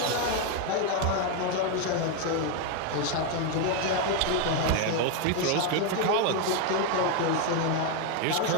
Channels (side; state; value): both; different; correlation 0.01